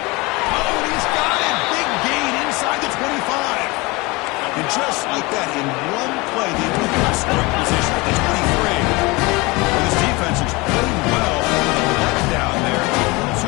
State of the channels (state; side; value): quieter; right; 24.5 dB